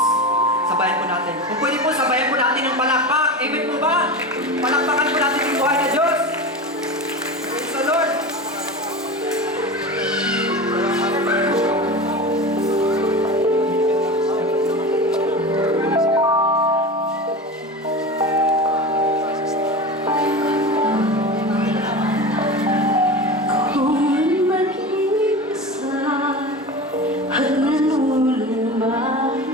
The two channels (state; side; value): normal; both; correlation 0.28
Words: sabayan po natin. Kung pwede po, sabayan po natin ng palakpak. Amen po ba? Palakpakan po natin yung buhay na Diyos. Praise the Lord.